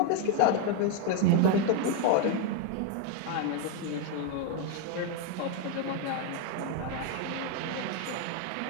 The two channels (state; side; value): different; both; correlation 0.01